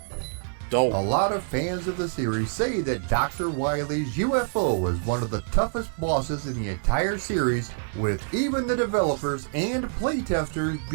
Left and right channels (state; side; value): silent; left; digital silence